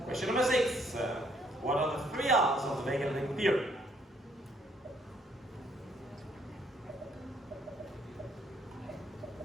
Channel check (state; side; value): normal; both; correlation 0.67